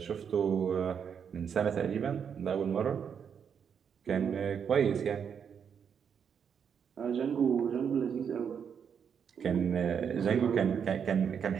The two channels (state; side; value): quieter; left; 7.4 dB